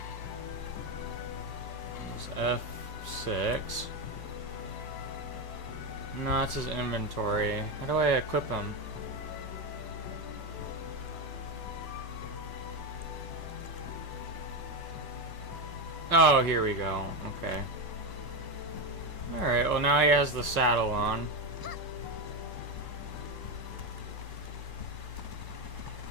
It's F6. No, it's his inventory. How do I equip him? Oh, here we go. Okay. Alright, well now he has the saddle on.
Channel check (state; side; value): late; left; 1.1 ms